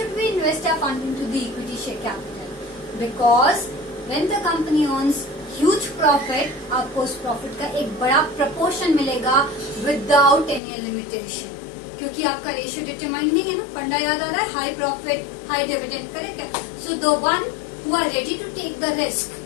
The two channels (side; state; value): right; drops out; at 10.6 s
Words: we invest our fund into the equity share capital? Because when the company earns huge profit, आपको उस प्रॉफिट का एक बड़ा प्रपोर्शन मिलेगा विदाउट एनी लिमिटेशन, क्योंकि आपका रेशियो डिटरमाइन नहीं है ना. फंडा याद आ रहा है, high profit high dividend. Correct है? So the one who are ready to take the risk,